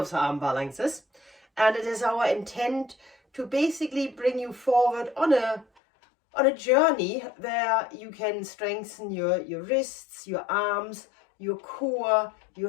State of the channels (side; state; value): right; drops out; at 5.7 s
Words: the arm balances, and it is our intent to basically bring you forward on a journey where you can strengthen your wrists, your arms, your core,